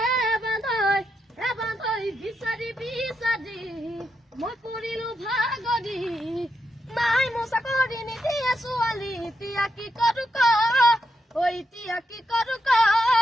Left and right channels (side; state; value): both; normal; correlation 0.83